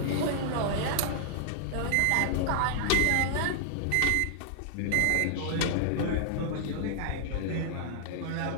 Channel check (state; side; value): different; both; correlation -0.01